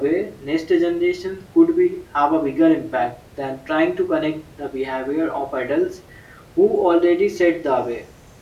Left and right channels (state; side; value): identical; both; correlation 1.00